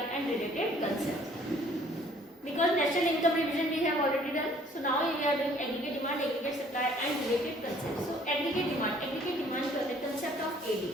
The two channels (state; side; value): normal; both; correlation 0.58